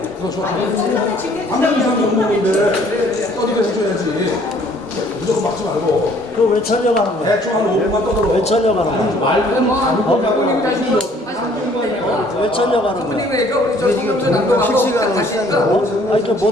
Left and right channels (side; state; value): both; normal; correlation 0.59